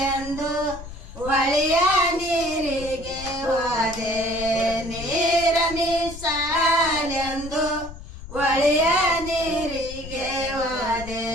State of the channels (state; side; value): noise; left; rumble, 13 dB below the sound